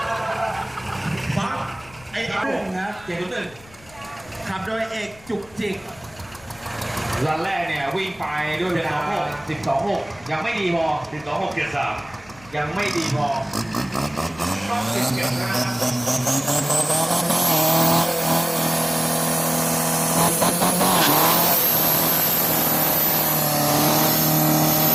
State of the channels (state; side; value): noise; left; rumble, 25 dB below the sound